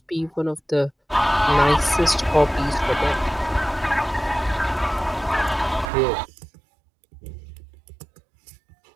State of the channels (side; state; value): left; drops out; at 5.9 s